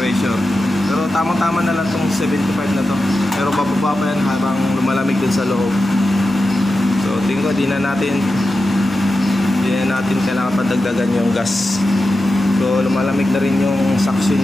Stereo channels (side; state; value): both; normal; correlation 0.91